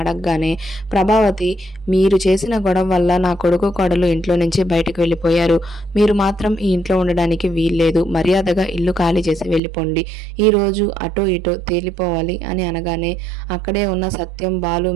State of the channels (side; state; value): left; drops out; at 9.6 s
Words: ప్రభావతి మీరు చేసిన గొడవ వల్ల నా కొడుకు కోడలు ఇంట్లో నుంచి బయటకు వెళ్ళిపోయారు. మీరు మాత్రం ఈ ఇంట్లో ఉండడానికి వీల్లేదు. మర్యాదగా ఇల్లు ఖాళీ చేసి వెళ్ళిపోండి. ఈరోజు అటో ఇటో తేలిపోవాలి అని అనగానే అక్కడే ఉన్న సత్యం, బాలు,